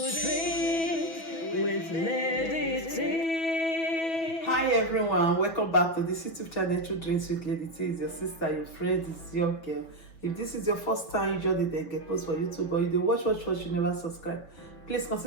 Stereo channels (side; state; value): right; late; 6.1 ms